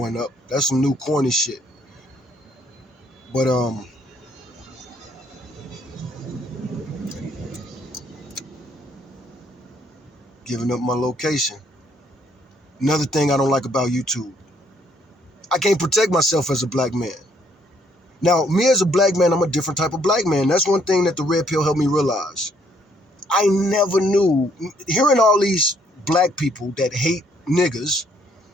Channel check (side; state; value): both; normal; correlation 0.67